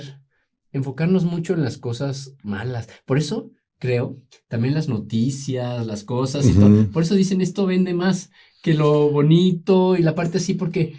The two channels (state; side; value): identical; both; correlation 1.00